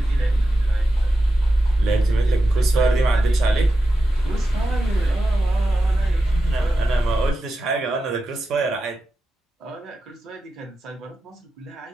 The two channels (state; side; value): normal; both; correlation 0.91